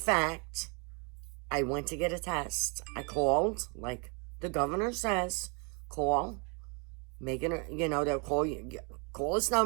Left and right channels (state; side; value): quieter; left; 34.5 dB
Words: I went to get a test. I called, like the governor says, call. They'll call you, call this